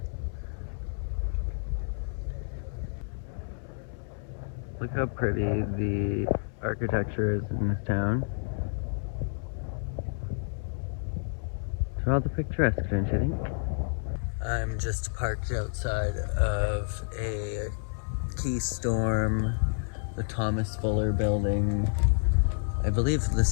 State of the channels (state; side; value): silent; right; 58 dB below the other